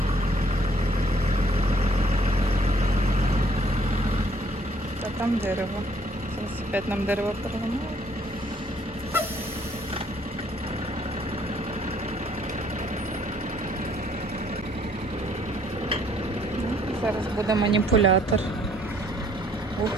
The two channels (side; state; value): both; normal; correlation 0.63